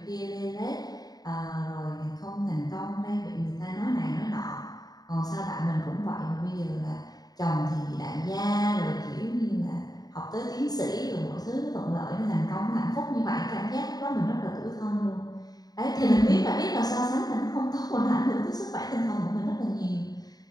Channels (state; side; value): late; right; 0.19 ms